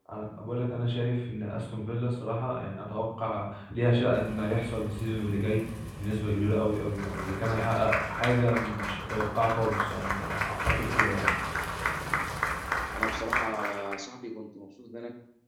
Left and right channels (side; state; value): both; identical; correlation 1.00